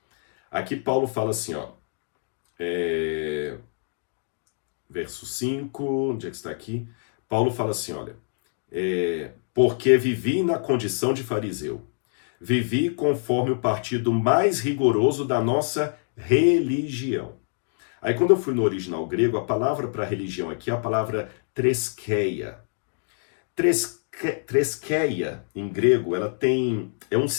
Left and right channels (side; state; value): right; silent; digital silence